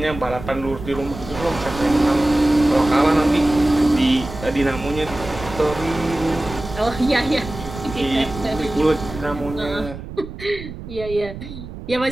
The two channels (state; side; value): noise; right; rumble, 12 dB below the sound